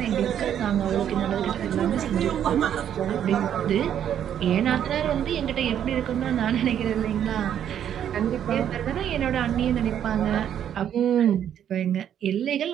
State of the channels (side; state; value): left; quieter; 9.7 dB